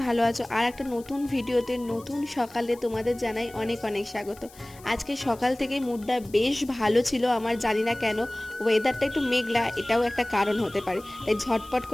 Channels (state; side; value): noise; left; hiss, 23 dB below the sound